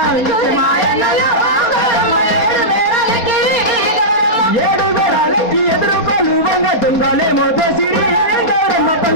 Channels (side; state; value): right; late; 4.2 ms